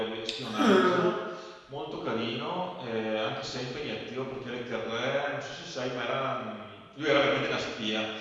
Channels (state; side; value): identical; both; correlation 1.00